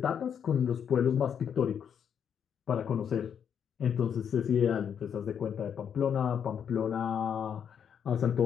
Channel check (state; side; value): quieter; right; 8.0 dB